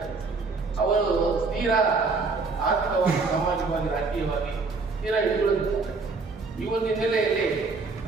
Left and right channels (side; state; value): left; quieter; 4.2 dB